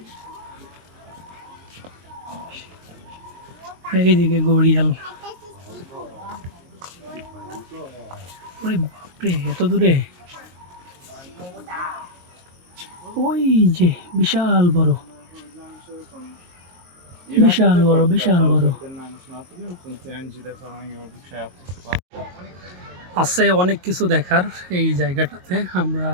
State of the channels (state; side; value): late; left; 22 ms